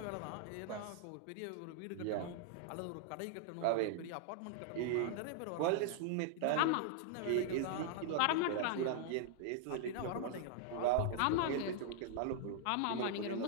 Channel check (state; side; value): different; both; correlation -0.01